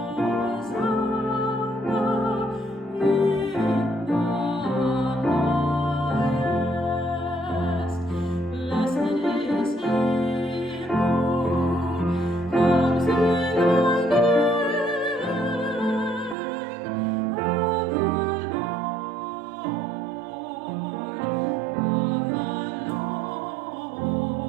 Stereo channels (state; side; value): drops out; left; at 16.4 s